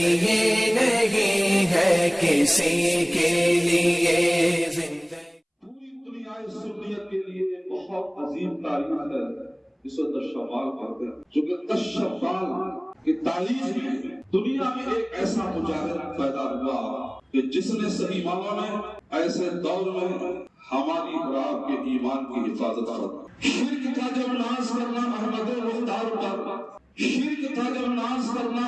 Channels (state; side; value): identical; both; correlation 1.00